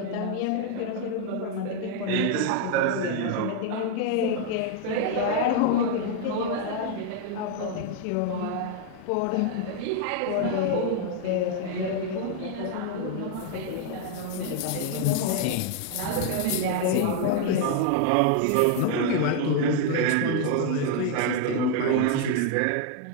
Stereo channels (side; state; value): both; different; correlation 0.00